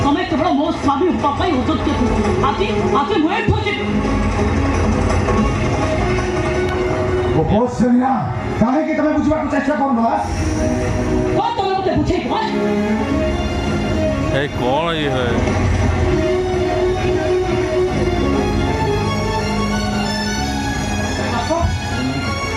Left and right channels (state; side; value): identical; both; correlation 1.00